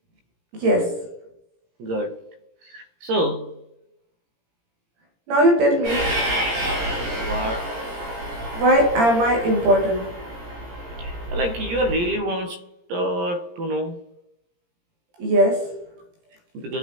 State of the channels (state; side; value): late; left; 17 ms